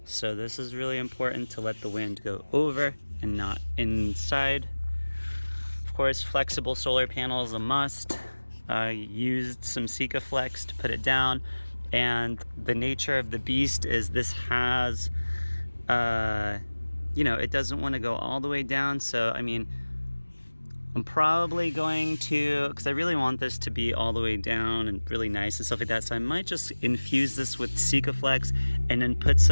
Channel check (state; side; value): inverted; both; correlation -1.00